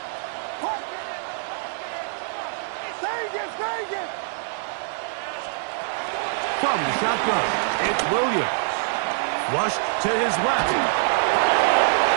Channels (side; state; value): left; silent; digital silence